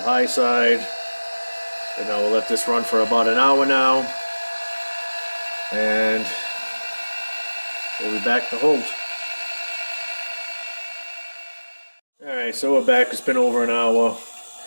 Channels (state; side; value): inverted; both; correlation -1.00